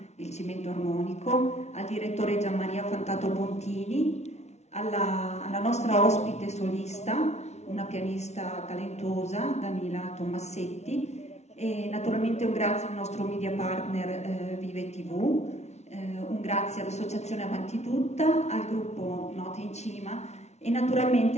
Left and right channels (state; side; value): late; right; 0.32 ms